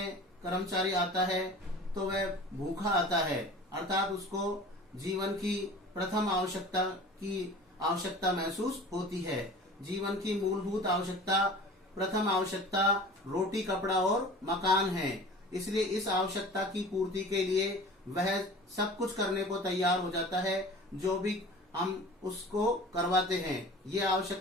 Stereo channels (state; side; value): normal; both; correlation 0.41